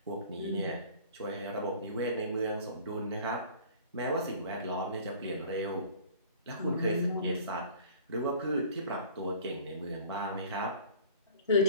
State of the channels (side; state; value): both; inverted; correlation -0.46